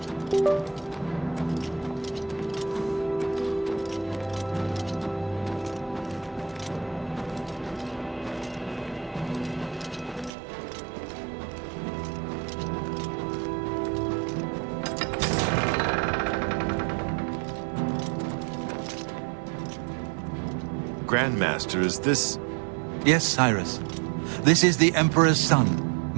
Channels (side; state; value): left; drops out; at 10.3 s